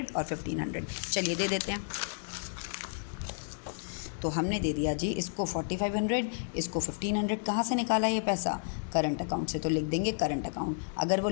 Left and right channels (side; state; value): right; silent; digital silence